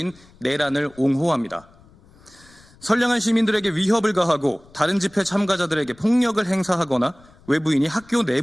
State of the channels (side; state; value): left; noise; rumble, 27 dB below the sound